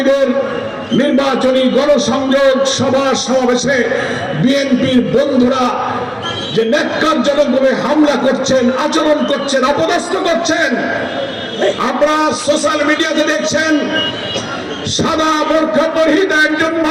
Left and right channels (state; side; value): identical; both; correlation 1.00